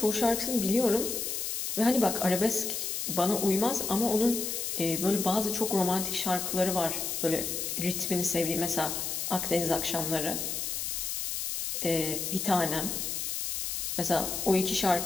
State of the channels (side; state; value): left; noise; hiss, 2 dB below the sound